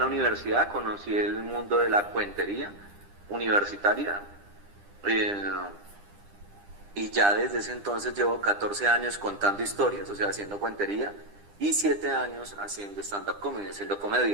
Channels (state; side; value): late; left; 10 ms